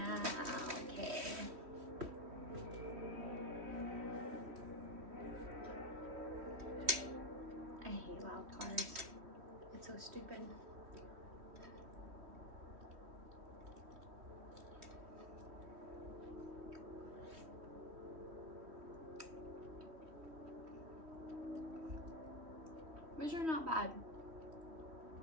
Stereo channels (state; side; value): late; left; 3.1 ms